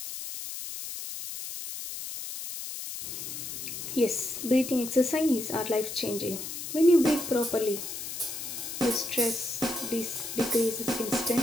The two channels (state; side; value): noise; left; hiss, 7 dB below the sound